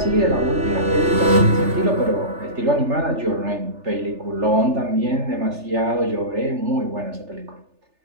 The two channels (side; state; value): left; late; 3.4 ms